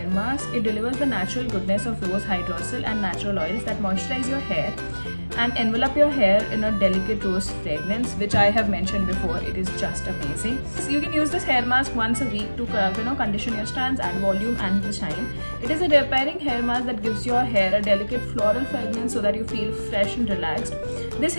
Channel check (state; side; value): inverted; both; correlation -1.00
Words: mask. It delivers the natural goodness of rose hydrosol and natural oils that moisturize your hair and envelop your hair in a delicate rose fragrance, which I have mentioned before. It is just amazing. So you can use this hair mask once a week to condition your strands, add volume and the shine. It is a repairing hair mask that gives your hair a delicate floral fragrance so that you feel fresh and relaxed. This